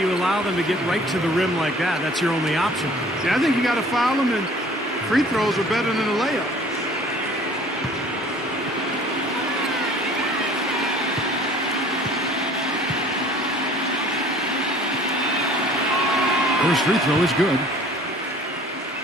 allow them to get right to the rim like that. That's your only option. Yeah, I think you got to foul them, and free throws are better than a layup. First free throw is good.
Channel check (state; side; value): normal; both; correlation 0.51